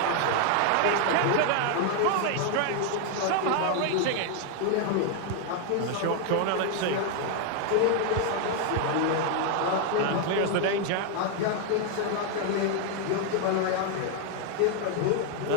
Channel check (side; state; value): both; different; correlation 0.00